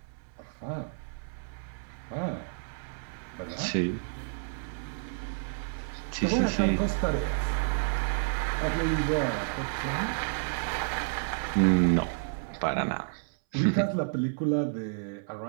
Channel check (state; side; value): silent; left; 58 dB below the other